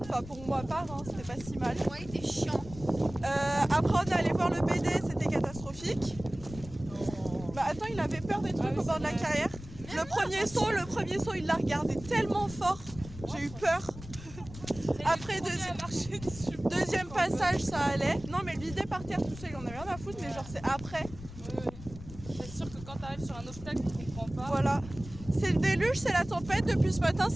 Enfin, pour moi, part, hein, c'était pas si mal. Ouais, il était chiant. Après, on est allé voir le BD, c'était catastrophique. Bah attends, il avait peur des trucs au bord de la carrière. Le premier saut, il l'a regardé tellement fort, j'ai eu peur. Après, deuxième passage, ça allait. Non, mais le vider par terre tout seul, il en avait rien à foutre, mais genre c'est après. C'est sûr que quand tu arrives sur un obstacle, tu comprends pas. Voilà. C'est le déluge, c'est la tempête, depuis ce matin,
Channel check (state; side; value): noise; left; rumble, 14 dB below the sound